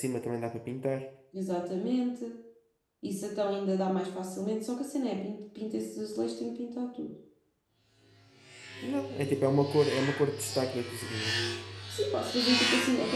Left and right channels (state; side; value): identical; both; correlation 1.00